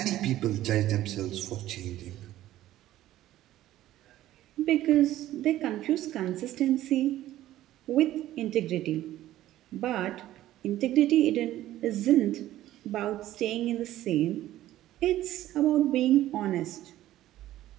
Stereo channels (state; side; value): quieter; left; 14.1 dB